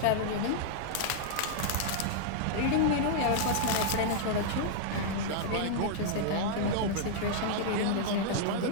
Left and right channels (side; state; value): both; different; correlation -0.01